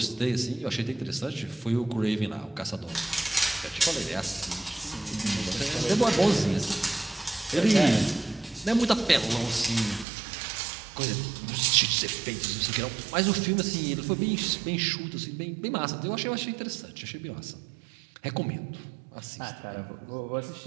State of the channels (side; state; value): left; drops out; at 10.1 s